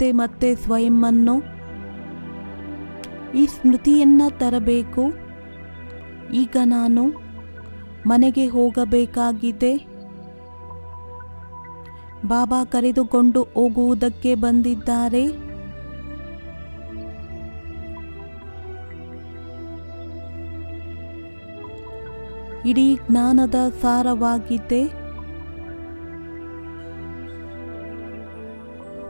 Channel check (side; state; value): both; inverted; correlation -1.00